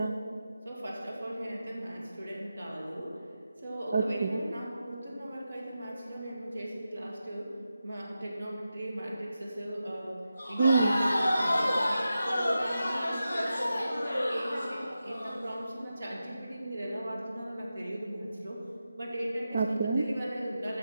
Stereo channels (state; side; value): inverted; both; correlation -0.91